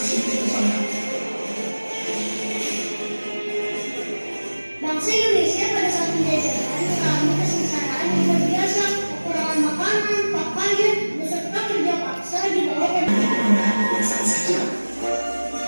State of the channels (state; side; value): inverted; both; correlation -1.00